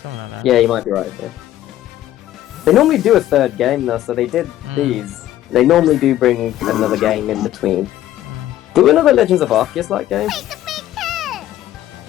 Something like that. Yeah, you might be right there. They normally do a 3rd game though, so they did these. They normally do bring another game in between. Do another Legends of Arceus like game?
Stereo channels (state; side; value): quieter; right; 13.3 dB